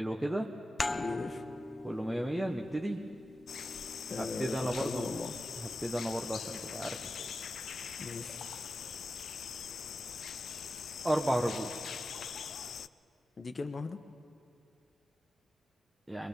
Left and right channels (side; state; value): both; normal; correlation 0.92